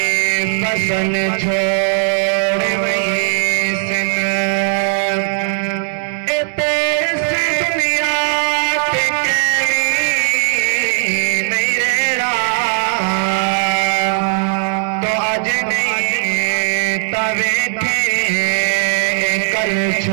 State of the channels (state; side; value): silent; left; digital silence